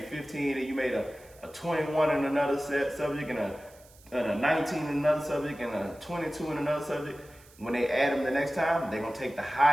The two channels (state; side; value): noise; right; hiss, 26 dB below the sound